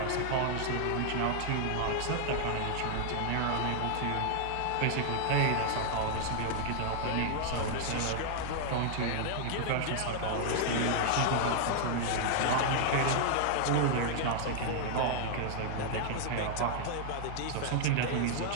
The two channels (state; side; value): different; both; correlation 0.00